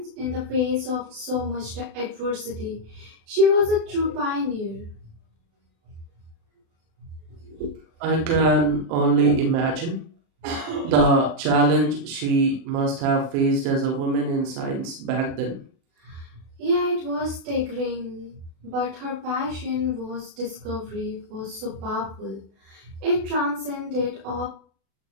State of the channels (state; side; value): late; left; 36 ms